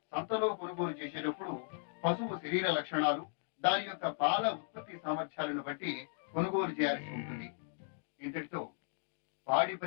సంతలో కొనుగోలు చేసేటప్పుడు పశువు శరీర లక్షణాలు, దాని యొక్క పాల ఉత్పత్తి సామర్థ్యాలను బట్టి కొనుగోలు చేయాల్సి ఉంటుంది. ఇంతటితో పాడి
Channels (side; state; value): right; silent; digital silence